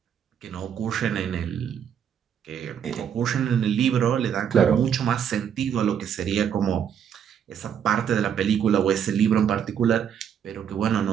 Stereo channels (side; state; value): left; quieter; 8.4 dB